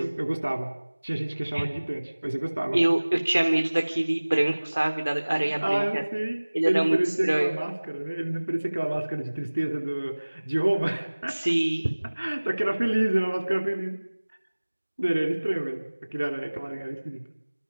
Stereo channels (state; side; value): inverted; both; correlation -1.00